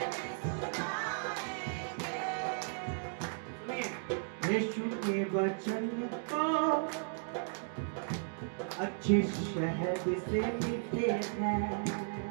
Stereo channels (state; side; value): silent; left; digital silence